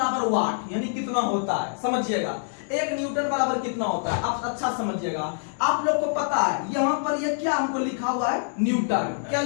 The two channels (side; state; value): right; silent; digital silence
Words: वाट यानी कितना होता है, समझिएगा 1 न्यूटन बराबर कितना होता है, आप अच्छा समझिएगा। आप लोग को पता है यहाँ पर ये क्या हमको लिखा हुआ है, न्यूटन, क्या